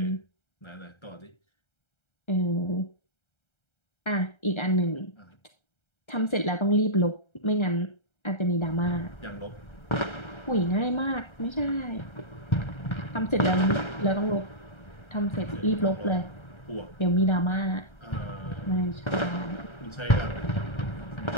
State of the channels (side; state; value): right; late; 1.3 ms